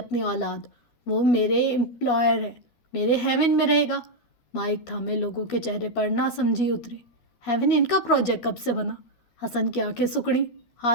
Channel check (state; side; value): late; right; 12 ms